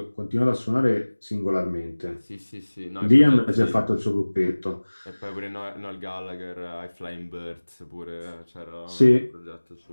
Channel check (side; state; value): both; inverted; correlation -1.00